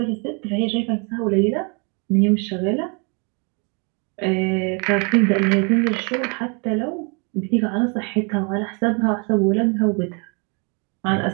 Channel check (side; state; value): left; quieter; 34.3 dB